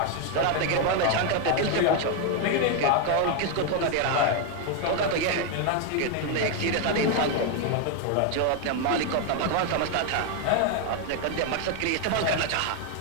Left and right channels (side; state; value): both; different; correlation 0.01